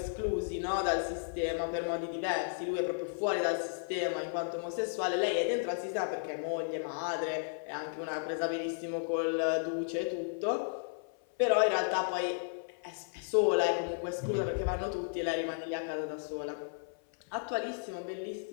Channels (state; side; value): silent; right; 55 dB below the other